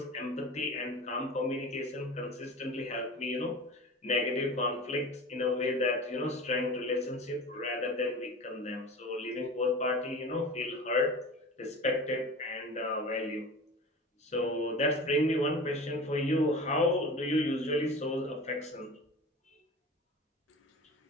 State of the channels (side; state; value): both; normal; correlation 0.35